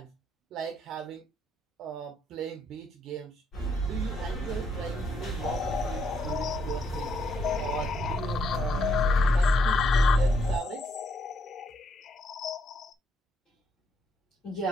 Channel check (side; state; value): both; normal; correlation 0.74